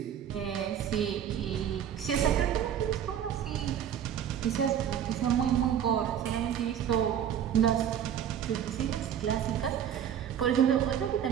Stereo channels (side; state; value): left; quieter; 9.4 dB